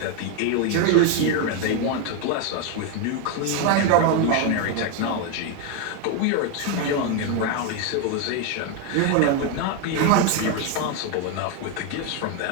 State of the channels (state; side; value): different; both; correlation 0.01